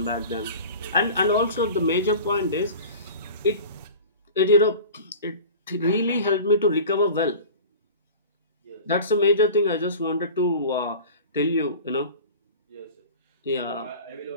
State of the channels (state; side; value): inverted; both; correlation -0.38